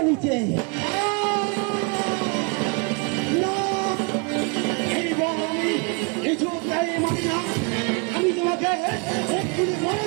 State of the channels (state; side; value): quieter; left; 33.5 dB